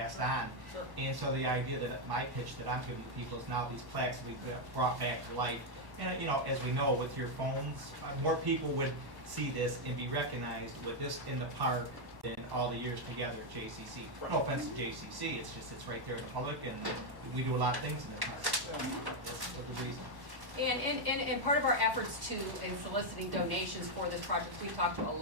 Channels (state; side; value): late; left; 1.1 ms